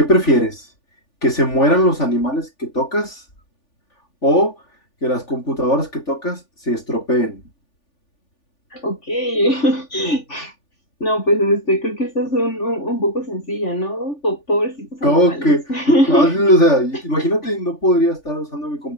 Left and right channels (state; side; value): late; right; 3.4 ms